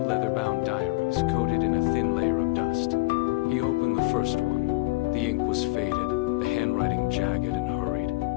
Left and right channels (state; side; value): quieter; right; 22.7 dB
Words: leather-bound diaries coated in a thin layer of dust. He opened the first one. The ink was faded, the handwriting jagged and hurried,